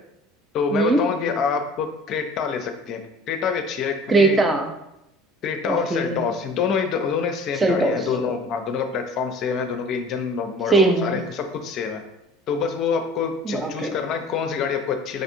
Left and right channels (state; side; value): normal; both; correlation 0.47